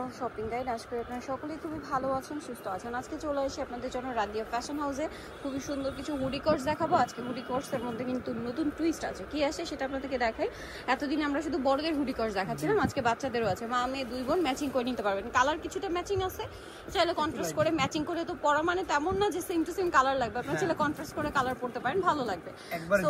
shopping guide. আজকে আপনারা সকলেই খুবই ভালো আছেন, সুস্থ আছেন। আজকে চলে আসি আপনাদের জন্য রাদিয়া ফ্যাশন হাউসে খুবই সুন্দর কিছু হুডি কোর্স দেখাবো। আজকে হুডি কোর্সের মধ্যে কিন্তু নতুন টুইস্ট আছে, কি আসে সেটা আপনাদেরকে দেখাই। এতদিন আমরা শুধু বড়দের হুডি কোর্স দেখাচ্ছিলাম, আজকে বাচ্চাদেরও আছে। মা মেয়ে দুই বোন ম্যাচিং করে নিতে পারবেন। কালার কিছুটা ম্যাচিং আছে, চাইলে কন্ট্রাস্ট করে ম্যাচিং করে তো পরা মানে তেমন না যে সেম টু সেম কালার লাগবে, আপনারা চাইলে কন্ট্রাস্ট করে কালার পড়তে পারেন, ভালো লাগবে। তো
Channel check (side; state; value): both; identical; correlation 1.00